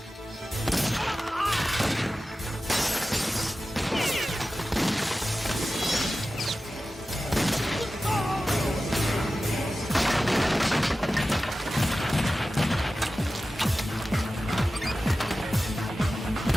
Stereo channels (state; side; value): normal; both; correlation 0.94